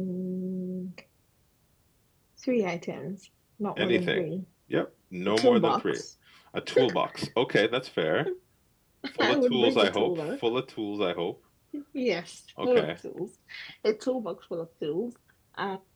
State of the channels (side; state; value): both; identical; correlation 1.00